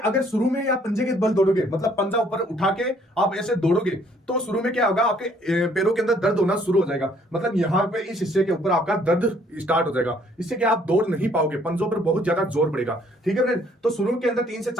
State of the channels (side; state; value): both; normal; correlation 0.63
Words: शुरू में आप पंजे के बल दौड़ोगे, मतलब पंजा ऊपर उठा के आप ऐसे दौड़ोगे तो शुरू में क्या होगा, आपके पैरों के अंदर दर्द होना शुरू हो जाएगा। मतलब यहाँ पे इस हिस्से के ऊपर आपका दर्द स्टार्ट हो जाएगा। इससे क्या आप दौड़ नहीं पाओगे, पंजों पर बहुत ज्यादा जोर पड़ेगा। ठीक है फ्रेंड्स, तो शुरू के अंदर 3 से